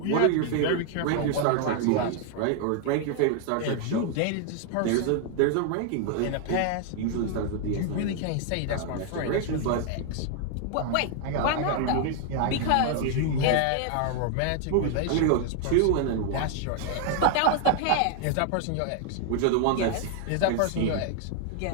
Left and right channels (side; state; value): both; different; correlation 0.00